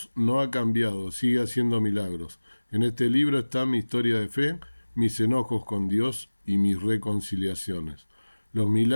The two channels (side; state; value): both; inverted; correlation -1.00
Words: no ha cambiado, sigue haciendo milagros. En este libro está mi historia de fe, mis enojos con Dios y mis reconciliaciones. Los